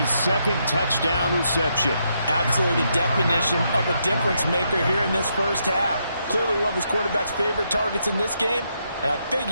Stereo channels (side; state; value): both; inverted; correlation -0.79